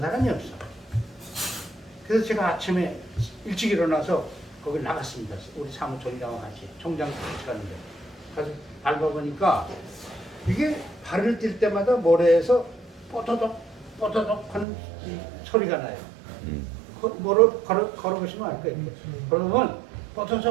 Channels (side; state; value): left; drops out; at 14.7 s